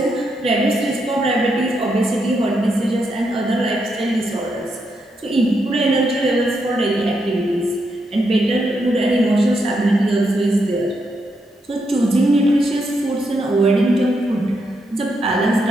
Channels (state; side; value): normal; both; correlation 0.81